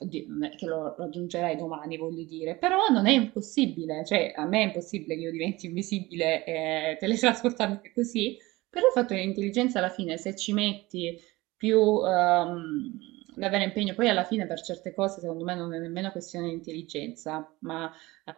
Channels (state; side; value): quieter; left; 20.5 dB